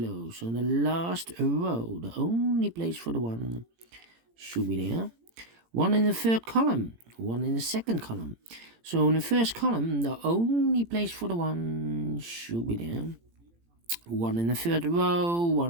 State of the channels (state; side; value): late; left; 18 ms